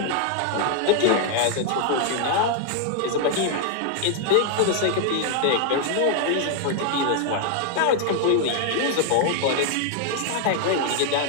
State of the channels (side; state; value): both; different; correlation 0.00